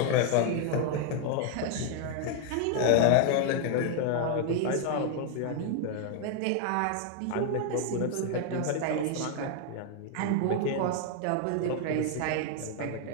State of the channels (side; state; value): both; different; correlation 0.00